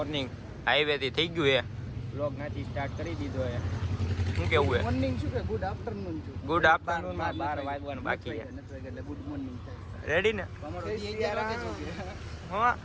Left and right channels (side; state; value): both; identical; correlation 1.00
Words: હાઈવેથી થઈ ગયું છે, વ્લોગ નાથી સ્ટાર્ટ કરી દીધો છે. શું કેવું છે? મોર્નિંગ શું કે ગુડ આફ્ટરનૂન છું. ગુડ આફ્ટરનૂન માં 12 વાગવાનું બાકી છે. એટલે ગુડ મોર્નિંગ થાય. રેડી ને? હા,